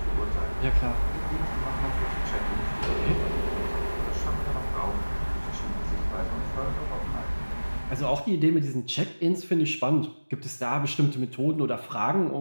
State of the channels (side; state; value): both; inverted; correlation -1.00